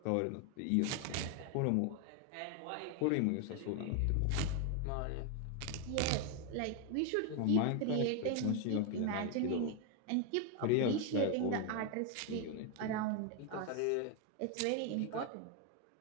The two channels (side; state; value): both; different; correlation 0.01